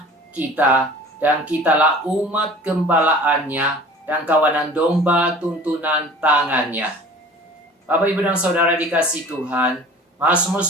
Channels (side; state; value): both; normal; correlation 0.44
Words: kita dan kitalah umat gembalaannya dan kawanan domba tuntunan tangannya. Bapak, Ibu, dan Saudara dikasih Tuhan, Mazmur